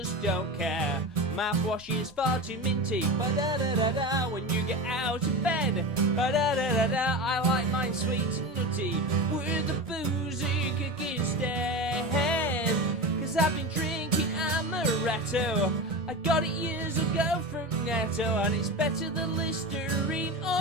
don't care. mouthwash is far too minty. Ba-da-da-da-da, when you get out of bed. Ba-da-da-da-da, I like mine sweet and nutty, with the boozy kick instead. 'Cause I've been drinking amaretto. I got it years ago from Netto, and it's better than Listerine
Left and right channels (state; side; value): normal; both; correlation 0.25